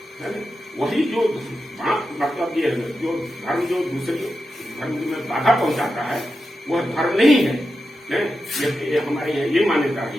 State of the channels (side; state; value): both; normal; correlation 0.90